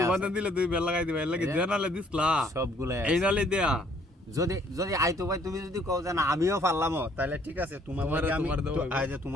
তোমাদের দিলে দুই বেল লাগাই দিবা, এর লাগি জানালে দিছলা সবগুলাই এই নালে দেয়া। যদি যদি আইতো ভাই তুমি যদি কও যে না আমিও পারলামও, তাহলে ঠিক আছে, তোমার আমি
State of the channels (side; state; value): both; normal; correlation 0.62